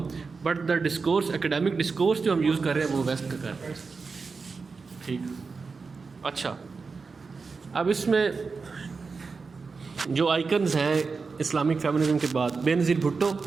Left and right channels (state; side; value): quieter; left; 4.6 dB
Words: but the discourse academic discourse جو ہم یوز کر رہے ہیں وہ ویسٹ کا کر رہے ہیں. ٹھیک. اچھا، اب اس میں جو آئیکنز ہیں اسلامک فیمنزم کے بعد، بے نظیر بھٹو،